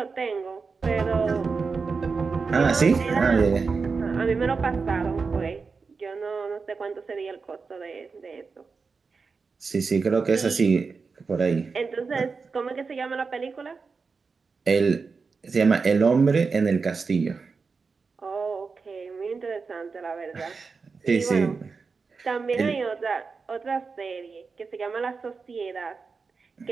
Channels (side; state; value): left; quieter; 4.8 dB